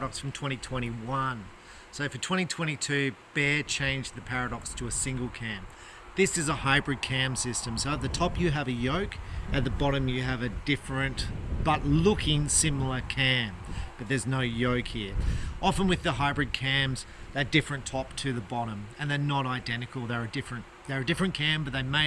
from 2021. So for 2022, Bear changed the Paradox to a single cam. This is a hybrid cam system. So at the top you have a yoke, at the bottom you have a different but looking similar cam, but there's no yoke here. Often with the hybrid cams, they're different top to the bottom, and they're not identical. They're a different cam, but they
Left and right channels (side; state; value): both; identical; correlation 1.00